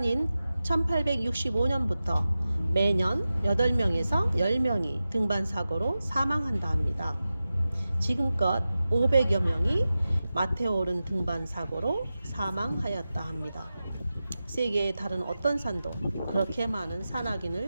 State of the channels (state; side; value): inverted; both; correlation -0.94